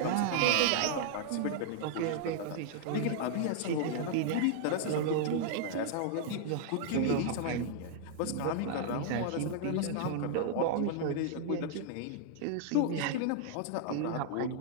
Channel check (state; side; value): different; both; correlation -0.01